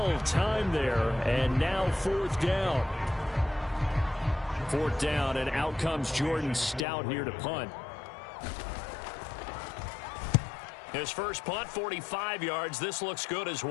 timed there. And now 4th down. 4th down, and out comes Jordan Stout here to punt. His first punt, 45 yards. This looks good as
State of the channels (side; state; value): right; drops out; at 6.9 s